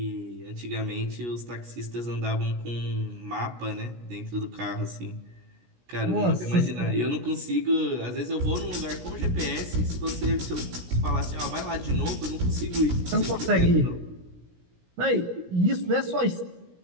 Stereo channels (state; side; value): late; left; 17 ms